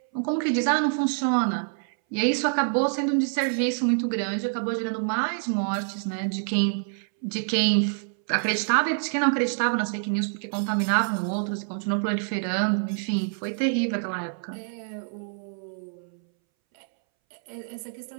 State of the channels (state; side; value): silent; left; 61 dB below the other